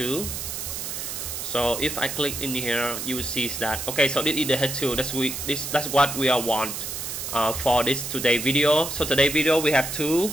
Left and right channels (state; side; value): noise; right; hiss, 5 dB below the sound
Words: So if I click in here, you will see that okay. So this is the H2. That's what we want for this today video. So today video we have 2.